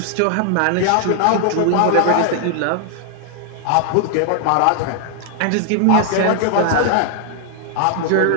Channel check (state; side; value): different; both; correlation 0.00